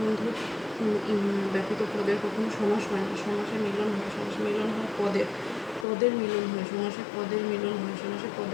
ব্যতীত পদের কখনো সমাস হয় না। সমাসে মিলন হয়, সমাসে মিলন হয় পদের মিলন হয়, সমাসে পদের মিলন হয়, সমাসে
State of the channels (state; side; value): drops out; right; at 5.9 s